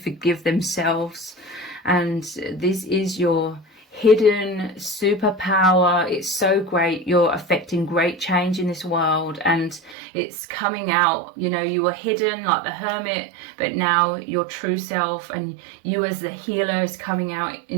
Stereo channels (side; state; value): left; drops out; at 10.0 s